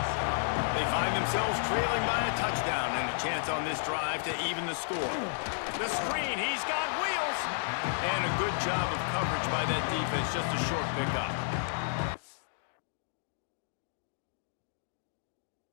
They find themselves trailing by a touchdown and a chance on this drive to even the score. The screen, he's got wheels. And a good job of coverage by that defense, just a short pickup.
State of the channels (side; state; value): right; silent; digital silence